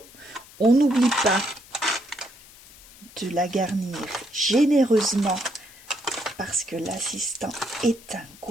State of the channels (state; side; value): noise; left; hiss, 22 dB below the sound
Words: On n'oublie pas de la garnir généreusement parce que l'assistant est un